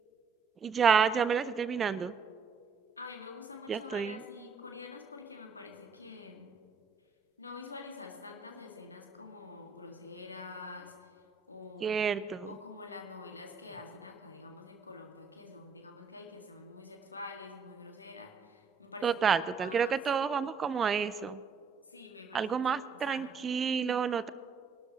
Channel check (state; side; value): quieter; left; 5.9 dB